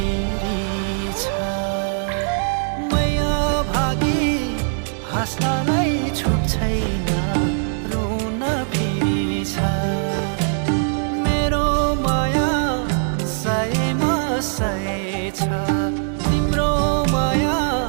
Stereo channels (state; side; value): silent; left; digital silence